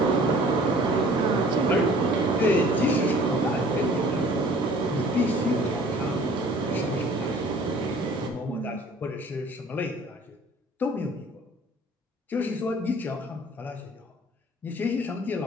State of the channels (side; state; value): both; normal; correlation 0.51